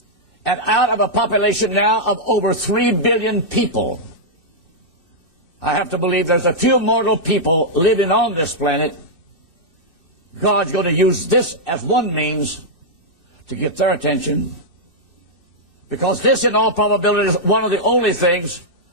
And out of a population now of over 3 billion people, I have to believe there's a few mortal people living on this planet. God's going to use this as one means to get their attention. Because this, in all probability, is one of the only things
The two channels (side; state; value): left; late; 2.6 ms